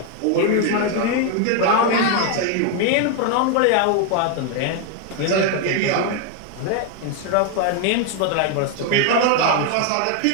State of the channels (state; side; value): different; both; correlation 0.01